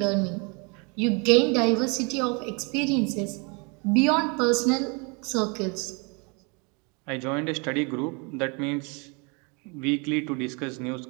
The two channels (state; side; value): quieter; left; 32.3 dB